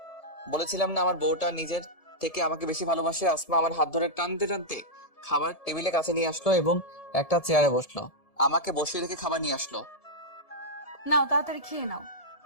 বলেছিলাম না আমার বউটা নিজের থেকে আমাকে বেশি ভালোবাসে। আসমা আমার হাত ধরে টানতে টানতে খাবার টেবিলে কাছে নিয়ে আসলো এবং একটা চেয়ারে বসলো। আমাকে বসিয়ে রেখে খাবার নিয়ে আসলো। নাও, তাড়াতাড়ি খেয়ে নাও।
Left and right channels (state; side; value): late; right; 1.7 ms